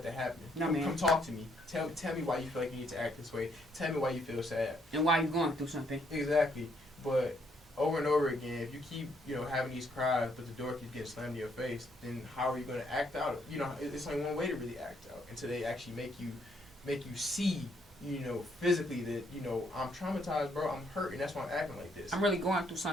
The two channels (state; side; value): normal; both; correlation 0.71